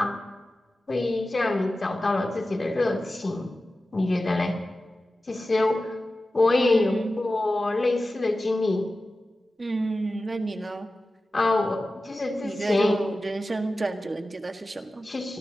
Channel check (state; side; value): normal; both; correlation 0.95